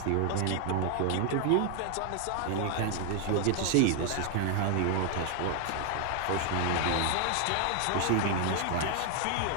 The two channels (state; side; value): different; both; correlation 0.00